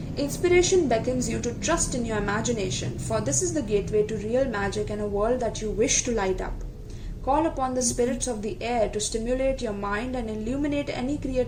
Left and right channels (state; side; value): identical; both; correlation 1.00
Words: Inspiration beckons you to trust in your imagination, for this is the gateway to real magic and a world that you wish to light up. Call upon the spirits of the air to stimulate your mind and illuminate any